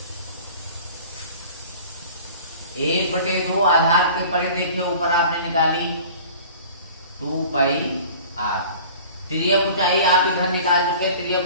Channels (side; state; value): both; inverted; correlation -0.44